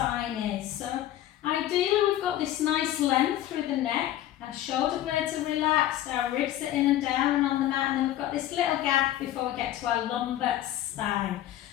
is. So ideally we've got this nice length through the neck. Our shoulder blades are relaxed, our ribs are in and down and on the mat, and then we've got this little gap before we get to our lumbar spine.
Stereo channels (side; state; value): right; quieter; 13.1 dB